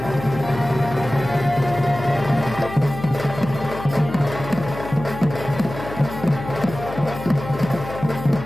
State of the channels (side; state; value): left; noise; hum, 11 dB below the sound